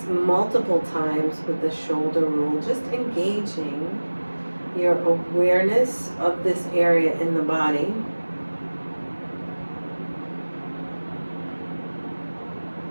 multiple times with the shoulder roll, just engaging your awareness of this area in the body.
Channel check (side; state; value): both; inverted; correlation -1.00